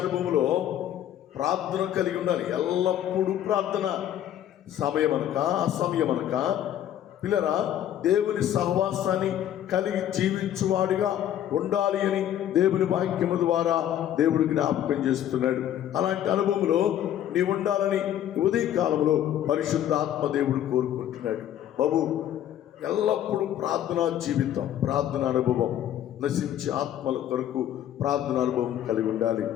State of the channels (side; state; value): right; quieter; 11.1 dB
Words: అనుభవంలో ప్రార్థన కలిగి ఉండాలి. ఎల్లప్పుడూ ప్రార్థన, సమయమనక అసమయమనక. పిల్లరా, దేవుని సహవాసాన్ని కలిగి జీవించువాడిగా ఉండాలి అని దేవుని వాక్యము ద్వారా దేవుడు జ్ఞాపకం చేస్తున్నాడు. అలాంటి అనుభవంలో నీ ఉండాలని ఉదయ కాలంలో పరిశుద్ధాత్మ దేవుడు కోరుకుంటున్నాడు. బాబు, ఎల్లప్పుడూ ప్రార్థనా జీవితం, ప్రార్థన అనుభవం, నశించే ఆత్మల కొరకు ప్రార్థన అనుభవం కలిగి ఉండాలి.